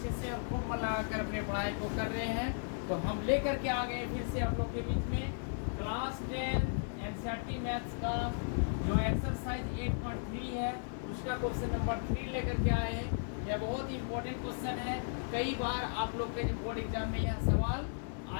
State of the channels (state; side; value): silent; right; digital silence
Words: से और खूब मन लगाकर अपने पढ़ाई को कर रहे हैं। तो हम लेकर के आ गए फिर से आप लोग के बीच में क्लास 10 एनसीईआरटी मैथ्स का जो एक्सरसाइज 8.3 है उसका क्वेश्चन नंबर 3 लेकर के आए हैं। यह बहुत ही इम्पोर्टेंट क्वेश्चन है, कई बार आप लोग के बोर्ड एग्जाम में यह सवाल